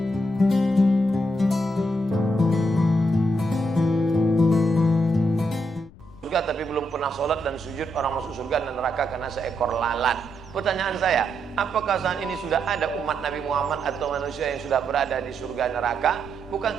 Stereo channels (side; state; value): left; noise; rumble, 22 dB below the sound